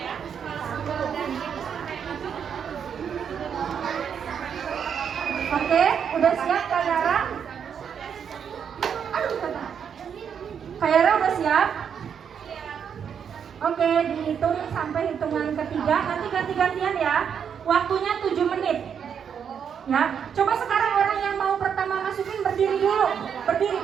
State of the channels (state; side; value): quieter; left; 7.6 dB